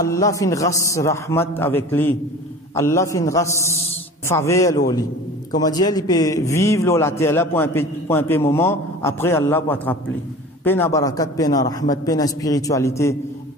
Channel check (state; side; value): normal; both; correlation 0.39